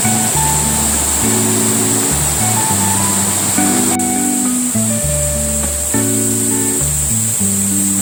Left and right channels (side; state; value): both; identical; correlation 1.00